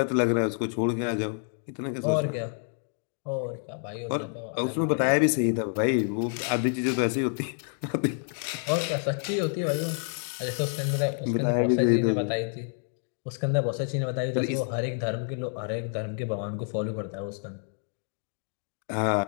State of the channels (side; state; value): right; silent; 59 dB below the other